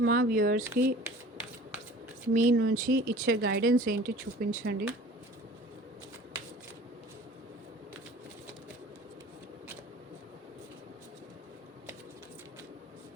మా వ్యూవర్స్కి మీ నుంచి ఇచ్చే గైడెన్స్ ఏంటి చూపించండి.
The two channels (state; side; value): normal; both; correlation 0.45